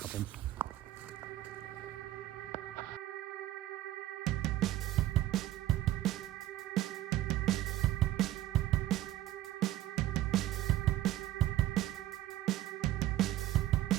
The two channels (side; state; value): left; quieter; 14.2 dB